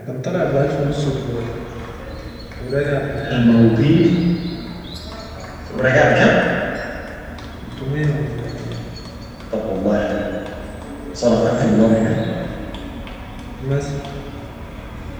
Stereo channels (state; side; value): identical; both; correlation 1.00